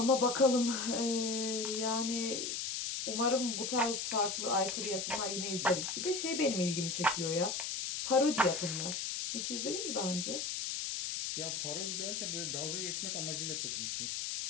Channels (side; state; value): left; noise; hiss, 2 dB below the sound